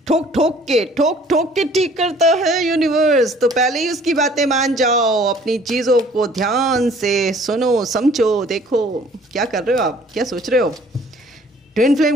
ठोक के ठीक करता है यूनिवर्स, तो पहले ही उसकी बातें मान जाओ, अपनी चीज़ों को ध्यान से सुनो, समझो, देखो क्या कर रहे हो आप, क्या सोच रहे हो। ट्विन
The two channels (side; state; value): both; normal; correlation 0.55